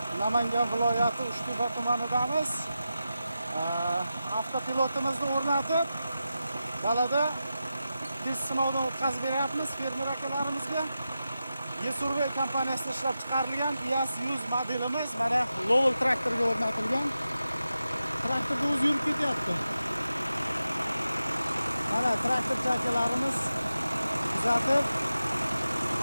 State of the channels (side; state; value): both; inverted; correlation -0.91